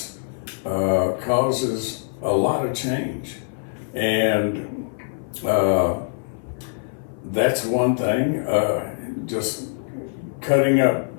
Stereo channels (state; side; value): silent; right; 59 dB below the other